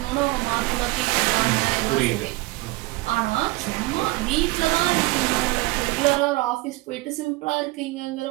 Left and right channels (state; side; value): quieter; left; 21.4 dB